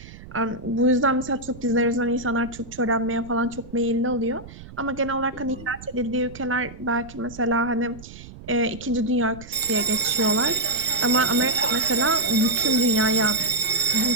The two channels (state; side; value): noise; right; rumble, 17 dB below the sound